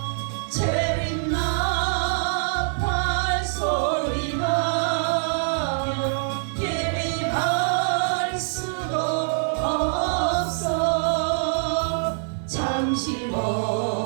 재림 나팔 소리 나며 예비할 수도 없어. 잠시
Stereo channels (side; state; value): left; silent; digital silence